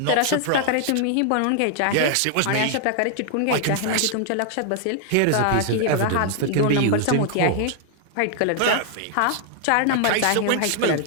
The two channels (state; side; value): different; both; correlation 0.00